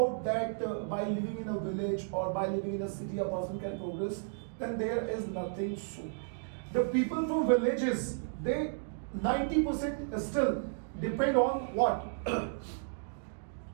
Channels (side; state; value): left; silent; digital silence